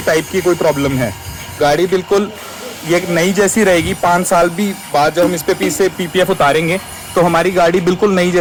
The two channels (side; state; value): both; identical; correlation 1.00